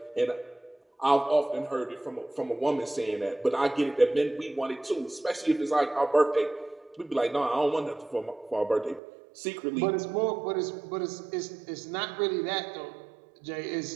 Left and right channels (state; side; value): drops out; left; at 9.0 s